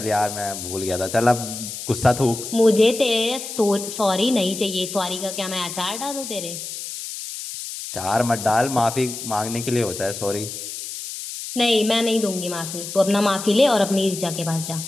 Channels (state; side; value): noise; left; hiss, 8 dB below the sound